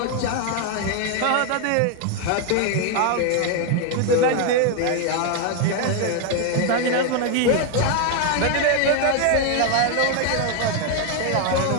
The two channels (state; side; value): different; both; correlation 0.01